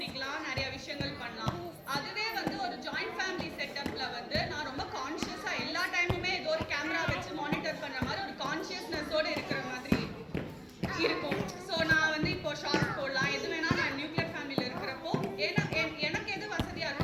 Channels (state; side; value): identical; both; correlation 1.00